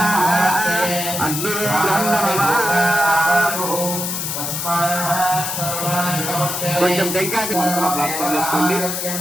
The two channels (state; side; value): noise; left; hiss, 3 dB below the sound